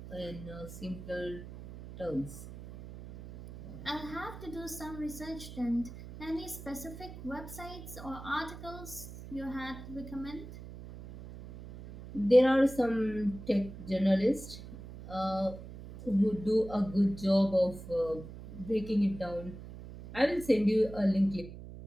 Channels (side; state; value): right; noise; hum, 13 dB below the sound